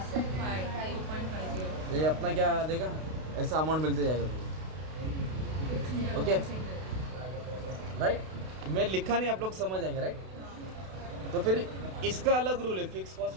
ये अपना क्या देगा ऐसा अमाउंट मिलते जाएगा तुमको ओके राइट मैं लिखा नहीं आप लोग समझ आएंगे राइट तो फिर इसका अलग रूल है फिक्स कॉस्ट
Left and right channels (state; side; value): late; left; 32 ms